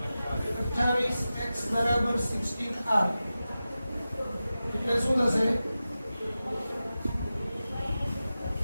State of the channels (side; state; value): both; inverted; correlation -0.94